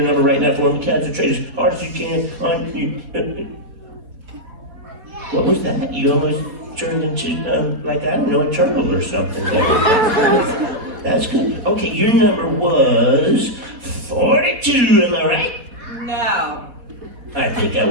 number right now for me. Concentrate as hard as you can on you. What was that? You almost turned into, like, I don't know, a turtle or something. That's good. Okay, your number was 42, am I right? No. I think I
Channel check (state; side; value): late; left; 4.1 ms